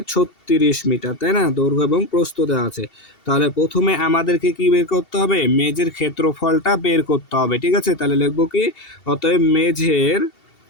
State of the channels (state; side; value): late; right; 2.7 ms